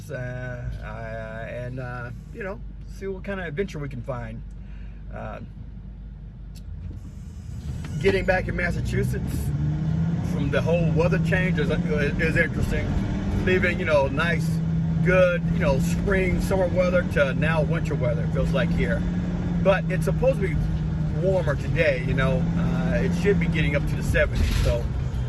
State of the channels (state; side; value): identical; both; correlation 1.00